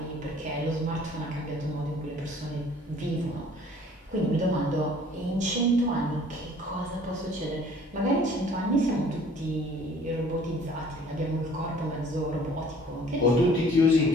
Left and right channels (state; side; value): normal; both; correlation 0.53